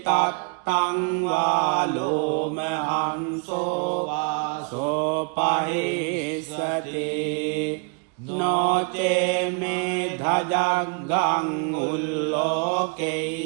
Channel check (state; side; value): quieter; left; 35.4 dB